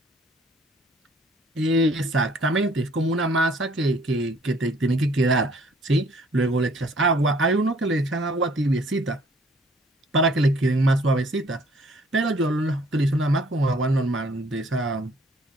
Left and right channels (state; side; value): normal; both; correlation 0.59